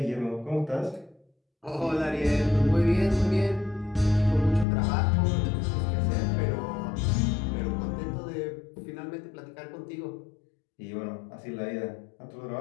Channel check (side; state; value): right; drops out; at 4.7 s